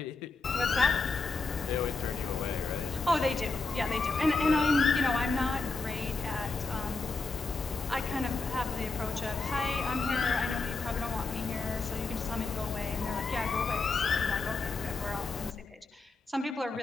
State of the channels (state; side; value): quieter; right; 3.9 dB